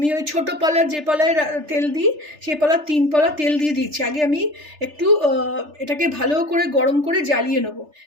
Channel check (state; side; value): late; left; 3.3 ms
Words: ওই ছোটো পলার যে পলায় তেল দিই সেই পলার 3 পলা তেল দিয়ে দিয়েছি। আগে আমি একটু এটাকে ভালো করে গরম করে জ্বালিয়ে নেবো,